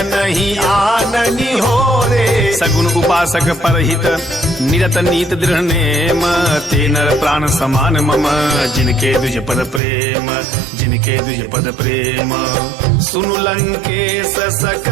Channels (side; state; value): left; drops out; at 9.8 s